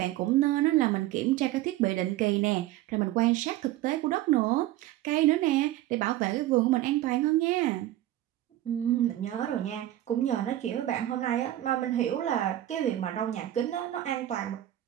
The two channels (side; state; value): left; quieter; 14.4 dB